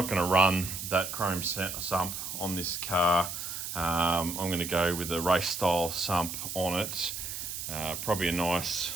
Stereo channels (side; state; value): right; noise; hiss, 6 dB below the sound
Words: gonna run that chrome sump on this car. I'm gonna go with a race style sump on it. Probably a nice,